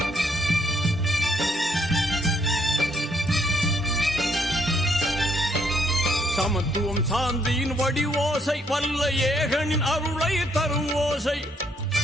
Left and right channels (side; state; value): both; normal; correlation 0.71